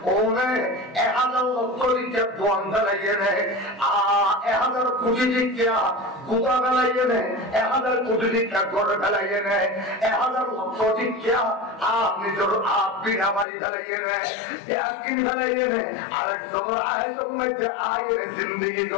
ওনে 1000 লক্ষ লিখে দোয়ান গালাইয়ে নে 1000 কোটি লিখে গুদা গালাইয়ে নে 1000 কোটি লিখে গড় গালাইয়ে নে 1000 লক্ষ লিখে নিজের বিনা বাড়ি গালাইয়ে নে ব্যাকিন গালাইয়ে নে আরেক সময় আয়তম মধ্যে আয়ের জিন্দেগি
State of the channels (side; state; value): right; drops out; at 13.5 s